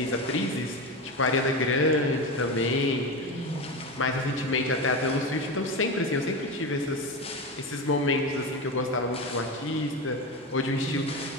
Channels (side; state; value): both; normal; correlation 0.20